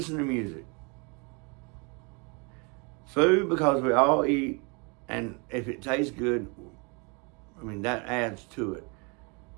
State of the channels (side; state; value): left; quieter; 32.4 dB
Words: to music. Food because we all eat, and if it tastes good, I mean that adds to it.